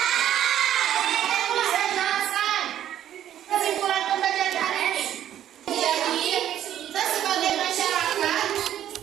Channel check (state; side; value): quieter; left; 11.1 dB